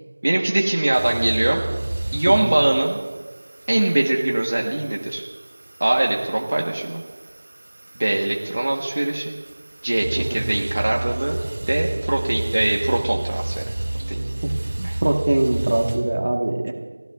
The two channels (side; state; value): both; inverted; correlation -1.00